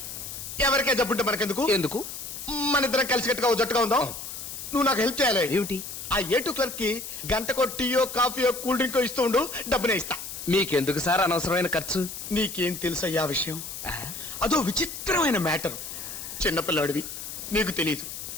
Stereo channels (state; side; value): noise; left; hiss, 9 dB below the sound